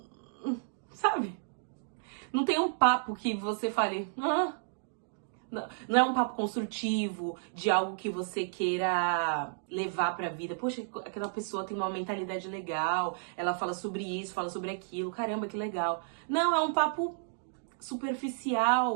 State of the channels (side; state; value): left; silent; digital silence